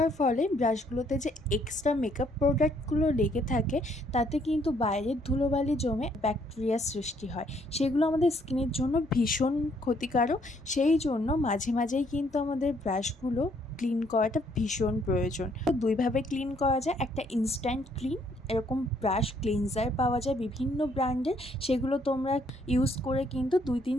ফলে ব্রাশগুলোতে যে এক্সট্রা মেকআপ প্রোডাক্টগুলো লেগে থাকে তাতে কিন্তু বাইরের ধুলোবালি জমে ব্যাকটেরিয়া সৃষ্টি হয়। সেগুলো আমাদের স্কিনের জন্য ভীষণ ক্ষতিকারক। সেই জন্য মাঝে মাঝেই কিন্তু আমাদের ব্রাশগুলো ক্লিন করাটা ভীষণ প্রয়োজন। তো দুইভাবে ক্লিন করা যায়, একটা ইনস্ট্যান্ট ক্লিন, এরকম ব্রাশ ক্লিনজার পাওয়া যায় বিভিন্ন ব্র্যান্ডের, সেগুলো তোমরা ইউজ করে কিন্তু 2-3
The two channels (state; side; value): normal; both; correlation 0.67